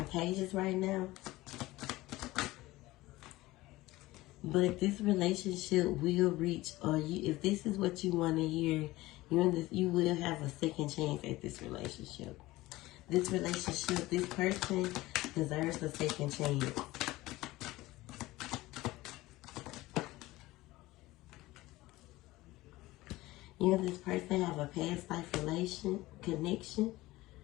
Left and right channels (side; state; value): right; quieter; 18.6 dB